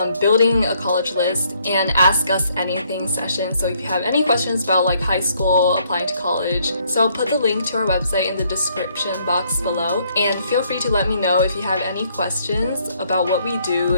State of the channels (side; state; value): both; inverted; correlation -0.69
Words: building a college list, and ask us anything session. So if you have any questions about high school, applying to college, so I'll put the link to our website in the description box below, and feel free to let me know if you have any questions about what we do